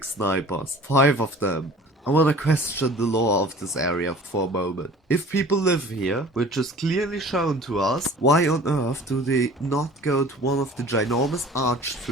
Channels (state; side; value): normal; both; correlation 0.45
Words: snipers. 5 of them. I wanna question the lore of this area for a moment. If people live here, which is clearly shown to us, why on earth do they not go to one of the ginormous arch